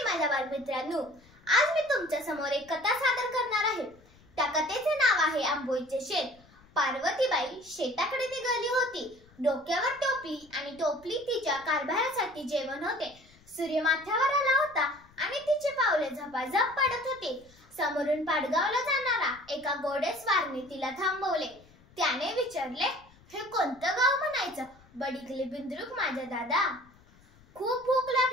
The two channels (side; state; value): left; noise; rumble, 27 dB below the sound